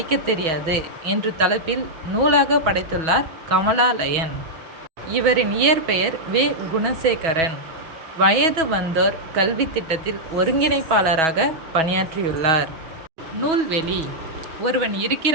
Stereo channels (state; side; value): late; left; 6.2 ms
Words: தெரியாது என்ற தலைப்பில் நூலாக படைத்துள்ளார் கமலா லயன். இவரின் இயற்பெயர் வே. குணசேகரன். வயது வந்தோர் கல்வி திட்டத்தில் ஒருங்கிணைப்பாளராக பணியாற்றியுள்ளார். நூல்வெளி: ஒருவன்